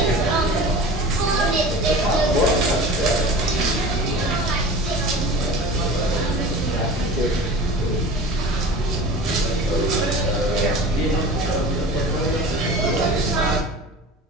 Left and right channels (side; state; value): both; normal; correlation 0.37